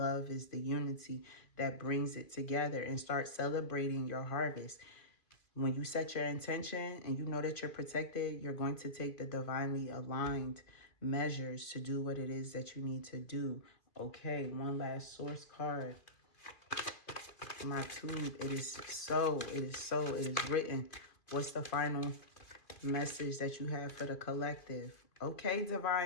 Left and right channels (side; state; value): right; late; 2.5 ms